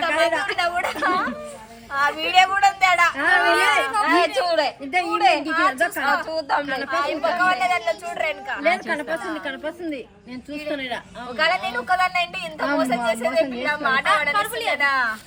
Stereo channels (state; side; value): identical; both; correlation 1.00